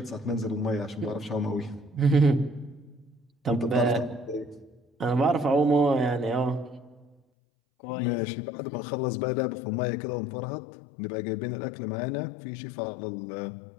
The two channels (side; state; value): right; drops out; at 7.2 s